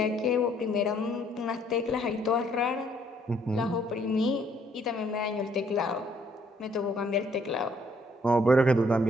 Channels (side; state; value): both; normal; correlation 0.66